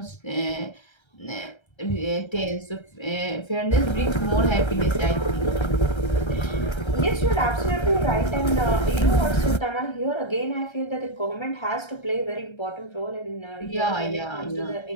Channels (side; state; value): right; late; 1.3 ms